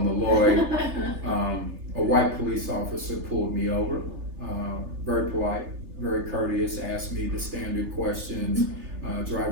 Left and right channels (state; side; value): late; left; 3.3 ms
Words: the Lloyd. A white police officer pulled me over, very polite, very courteous, asked me the standard questions,